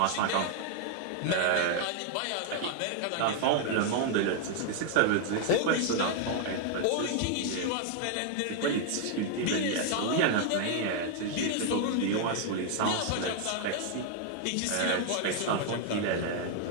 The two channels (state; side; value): different; both; correlation 0.00